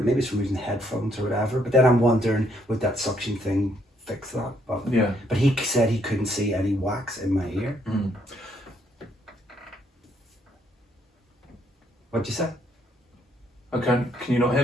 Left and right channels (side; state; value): both; normal; correlation 0.70